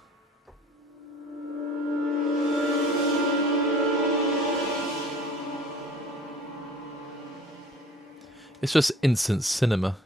It's just instant cinema.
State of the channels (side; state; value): both; normal; correlation 0.49